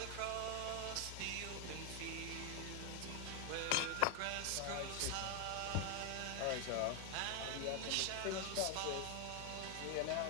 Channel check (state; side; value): different; both; correlation 0.00